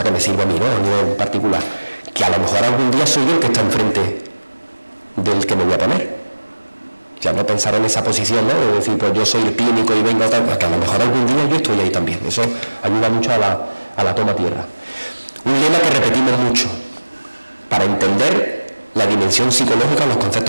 que me sirve a mí, ¿no? A nivel particular, que a lo mejor algún día soy yo el que está enfrente del que me voy a poner. Ya no pensar en esa posición, ¿no? De decir, pues yo soy el clínico y vengo a tal, que a lo mejor algún día yo estoy ahí también. Eso ayuda mucho a la toma tierra. Un lema que repetimos mucho para entender la dimensión psicológica, los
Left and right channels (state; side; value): inverted; both; correlation -1.00